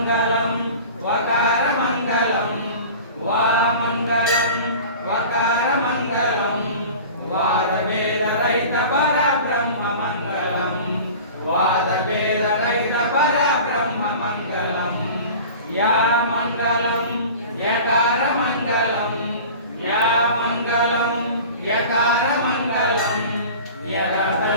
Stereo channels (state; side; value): inverted; both; correlation -0.39